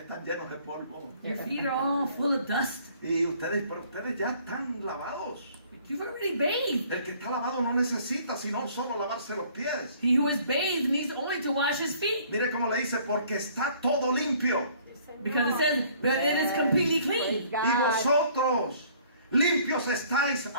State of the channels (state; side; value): inverted; both; correlation -0.57